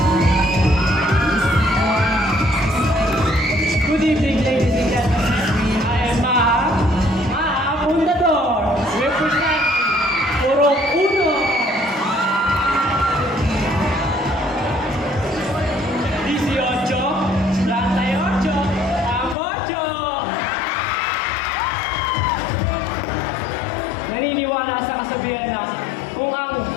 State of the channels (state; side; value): drops out; right; at 19.4 s